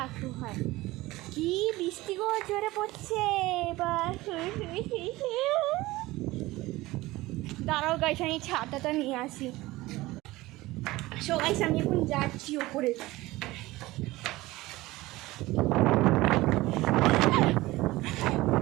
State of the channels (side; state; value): left; quieter; 19.0 dB